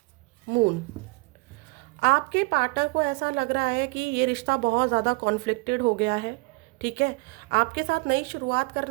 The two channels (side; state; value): left; quieter; 26.4 dB